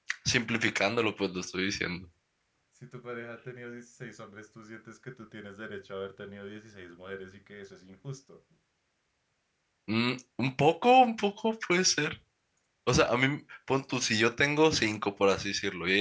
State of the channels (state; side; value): identical; both; correlation 1.00